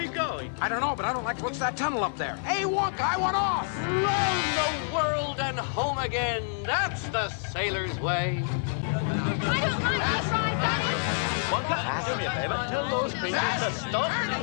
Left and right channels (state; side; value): silent; right; digital silence